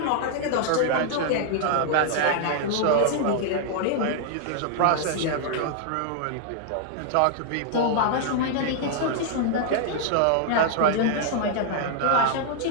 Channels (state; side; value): different; both; correlation -0.01